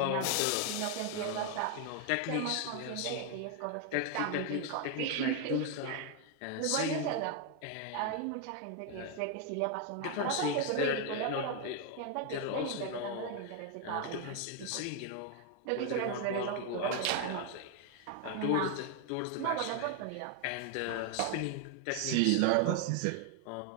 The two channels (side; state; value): both; different; correlation 0.01